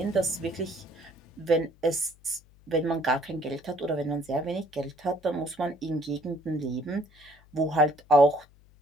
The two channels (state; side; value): noise; left; hum, 27 dB below the sound